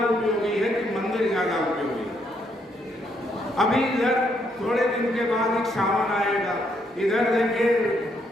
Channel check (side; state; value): both; normal; correlation 0.74